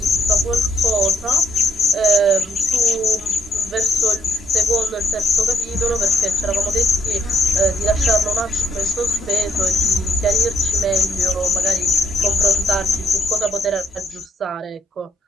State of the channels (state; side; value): normal; both; correlation 0.70